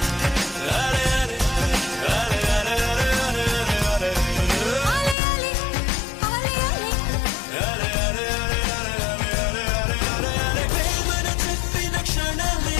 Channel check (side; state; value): right; drops out; at 5.2 s